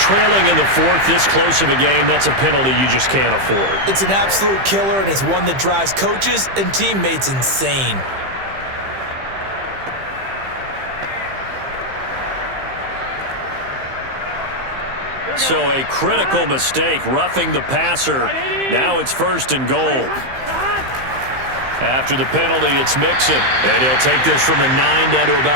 in the 4th, this close of a game, that's a penalty you just can't afford. It's an absolute killer, and it's one that drives coaches and teammates insane. So a critical mistake, roughing the passer. Now it's 1st and goal. After the penalty, it's Mixon. And he'll take this from the 9 down to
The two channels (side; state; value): left; late; 15 ms